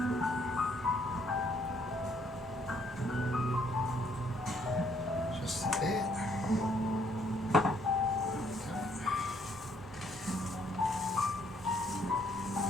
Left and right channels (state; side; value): normal; both; correlation 0.67